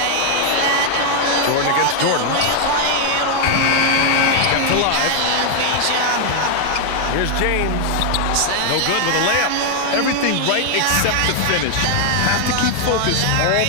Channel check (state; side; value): different; both; correlation 0.00